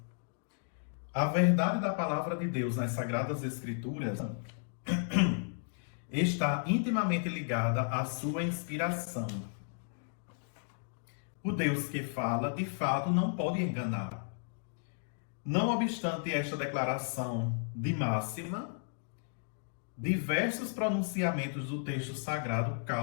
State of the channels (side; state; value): right; silent; digital silence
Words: A verdade da palavra de Deus nas Sagradas Escrituras está intimamente ligada à sua inspiração. O Deus que fala, de fato, não pode enganar. Não obstante esta declaração de máxima, diversos pronunciamentos do texto sagrado